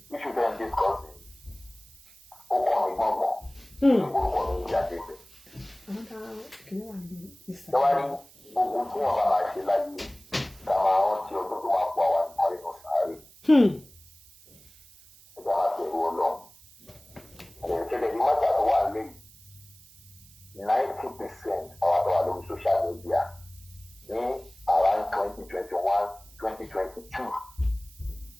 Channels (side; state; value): right; noise; hiss, 25 dB below the sound